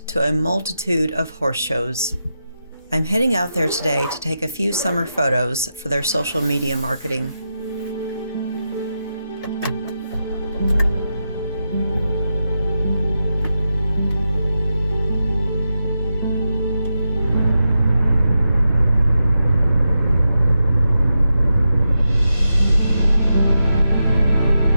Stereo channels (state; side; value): inverted; both; correlation -0.88